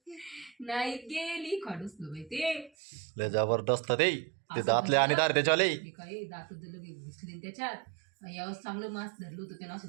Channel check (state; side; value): drops out; left; at 2.7 s